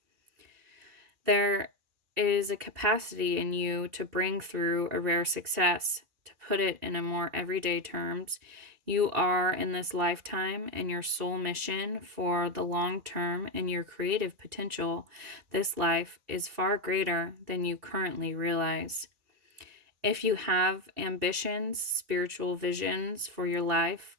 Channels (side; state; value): left; late; 2.4 ms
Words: There is a capacity in you to bring through a rare success. To put it in a more everyday terms, you are in this lifetime and your soul mission for the long term and your creative potential. This life is far greater than you currently realize. If you have ambitions, spiritual visions for your life,